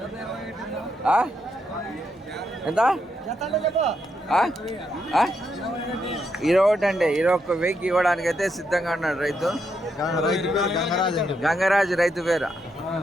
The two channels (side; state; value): both; normal; correlation 0.80